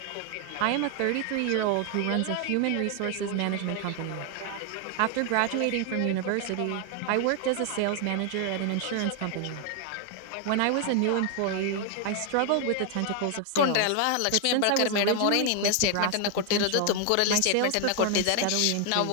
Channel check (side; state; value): both; different; correlation 0.00